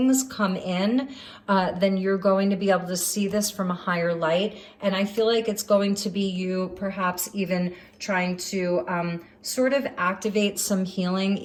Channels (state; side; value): identical; both; correlation 1.00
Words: come in, then you're going to be able to see this from a higher light. And I feel like it's going to be you perhaps even trying to sort of activate some healing